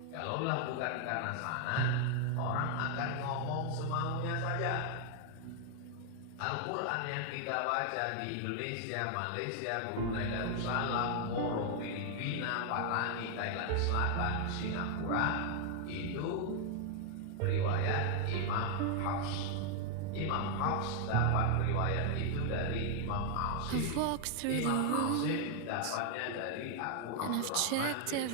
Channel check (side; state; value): both; different; correlation 0.00